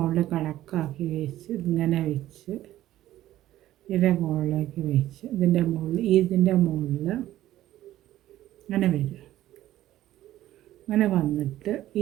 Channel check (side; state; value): left; quieter; 14.0 dB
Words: കണക്കാക്കി വെച്ച് ഇങ്ങനെ വെച്ച് ഇതിൻ്റെ മുകളിലേക്ക് വെച്ച് ഇതിൻ്റെ മുകളിൽ അങ്ങനെ വരും. അങ്ങനെ വന്നിട്ട്